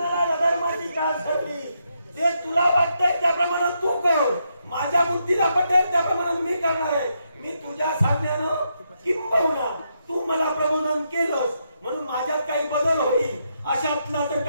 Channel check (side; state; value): both; inverted; correlation -0.80